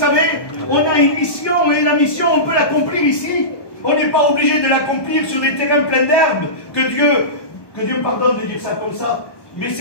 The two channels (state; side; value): late; right; 1.2 ms